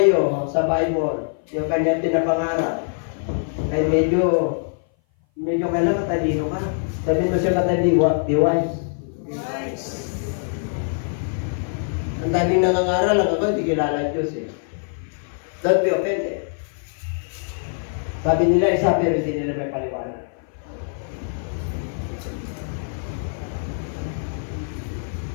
sa Bible, yung kanyang pinapangarap, ay medyo kailangan talino ka. Sabihin mo siya kataliwa, be wise. Ang daming nangangaral, ang ako, hindi kilala ang Diyos eh. Don't be offended. Sabi nila isa, pero hindi nila may paliwanag.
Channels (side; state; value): right; silent; 57 dB below the other